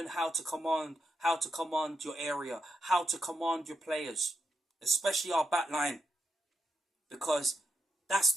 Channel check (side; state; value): both; normal; correlation 0.83